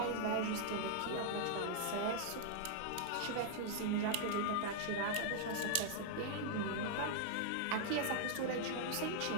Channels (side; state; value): both; different; correlation -0.01